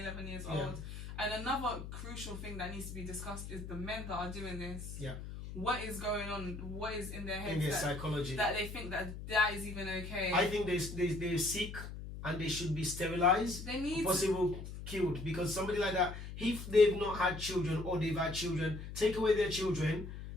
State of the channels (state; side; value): noise; left; hum, 9 dB below the sound